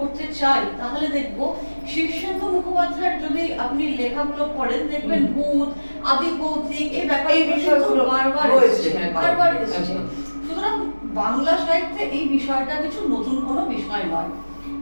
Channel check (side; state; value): both; inverted; correlation -1.00